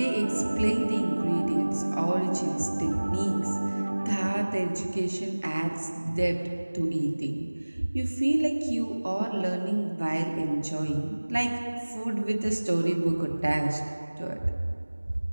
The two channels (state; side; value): inverted; both; correlation -1.00